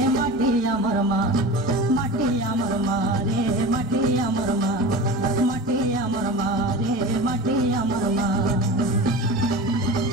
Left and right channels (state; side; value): normal; both; correlation 0.32